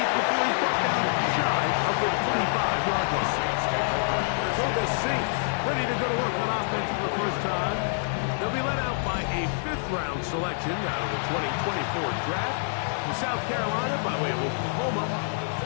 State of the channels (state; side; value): silent; right; 58 dB below the other